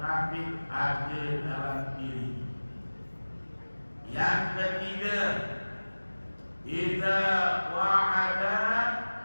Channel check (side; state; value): both; inverted; correlation -1.00